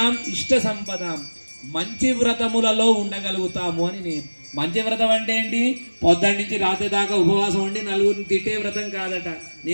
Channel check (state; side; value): inverted; both; correlation -1.00